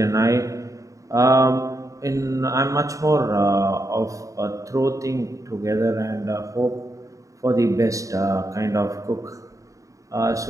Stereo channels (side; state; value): left; late; 0.16 ms